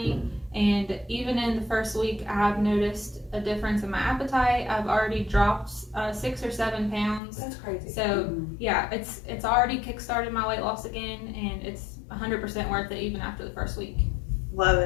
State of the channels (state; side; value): drops out; right; at 7.2 s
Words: And even in the first week, I've noticed a difference in my appetite. I've already dropped 6 or 7 pounds. That's crazy. So yeah, it's already kickstarted my weight loss again, and it's 100% worth it even after the first week. Love